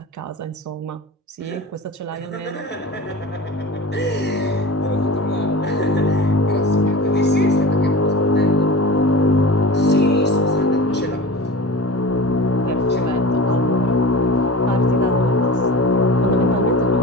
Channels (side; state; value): both; normal; correlation 0.33